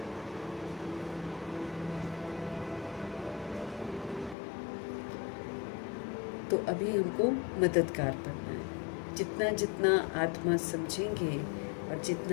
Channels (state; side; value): drops out; right; at 4.4 s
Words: तो अभी हमको मददगार बनना है। जितना जितना आत्मा समझेंगे और